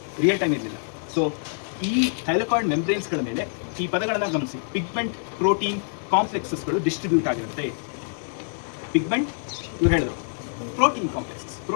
ರಿಯಲ್ ಟೈಮ್ ಇರಲಿಲ್ಲ. ಸೊ ಈ ಥೈಲಕಾಯ್ಡ್ ಮೆಂಬ್ರೇನ್ಸ್ಗಳ ಮೇಲೆ ಈ ಪದಗಳನ್ನು ಗಮನಿಸಿ. ಪಿಗ್ಮೆಂಟ್, ಪ್ರೋಟೀನ್ ಕಾಂಪ್ಲೆಕ್ಸಸ್ಗಳು ಡಿಸ್ಟ್ರಿಬ್ಯೂಟ್ ಆಗಿರುತ್ತೆ. ಪಿಗ್ಮೆಂಟ್ ಇವ್ರು ಹೇಳಿದ್ರು, ಪ್ರೋಟೀನ್ ಕಾಂಪ್ಲೆಕ್ಸಸ್.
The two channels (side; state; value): right; silent; digital silence